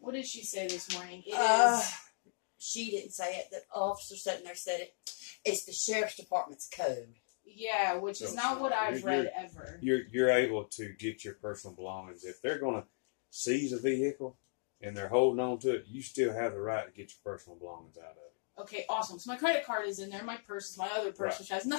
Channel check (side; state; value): right; silent; digital silence